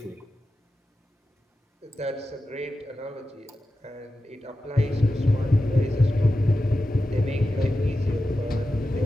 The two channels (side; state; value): both; normal; correlation 0.92